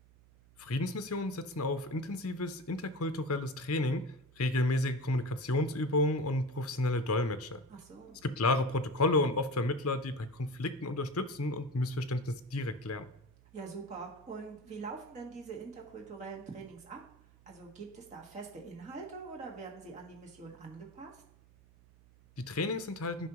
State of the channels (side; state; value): right; noise; hum, 26 dB below the sound